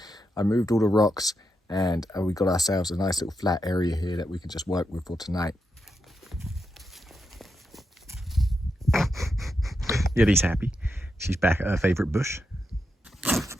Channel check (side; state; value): both; normal; correlation 0.85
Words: I moved all the rocks, and we got ourselves a nice little flat area here that we can just work with for tonight. Yeti's happy. She's back at her favorite bush.